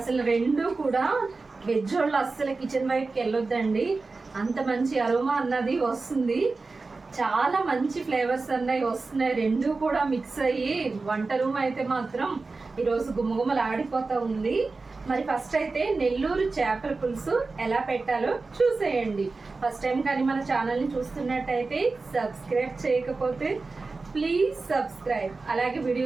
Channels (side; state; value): left; quieter; 3.9 dB